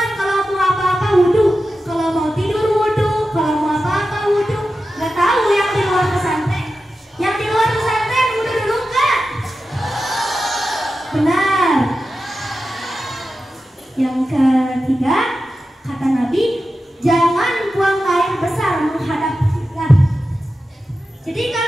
kalau mau apa-apa wudhu, kalau mau tidur wudhu, kalau mau apa-apa wudhu. Nggak tahu yang di luar pesantren. Yang di luar pesantren wudhu dulu nggak? Benar. Yang ketiga kata Nabi, jangan buang air besar menghadap kiblat. Jadi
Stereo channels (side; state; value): both; normal; correlation 0.92